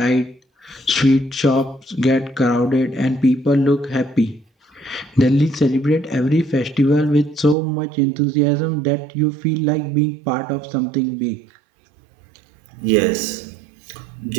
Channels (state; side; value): drops out; left; at 7.6 s